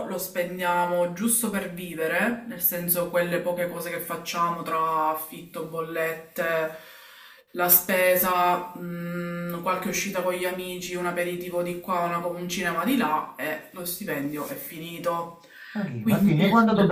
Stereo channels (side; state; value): both; identical; correlation 1.00